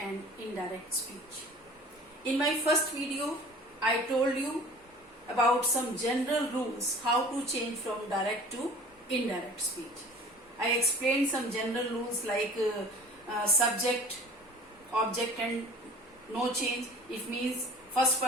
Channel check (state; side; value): normal; both; correlation 0.46